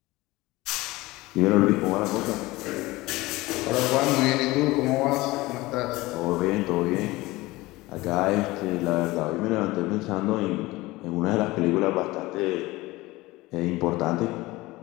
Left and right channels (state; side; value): quieter; right; 20.1 dB